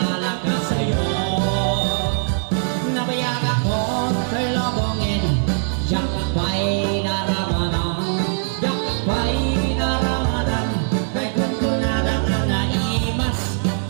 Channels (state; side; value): silent; left; digital silence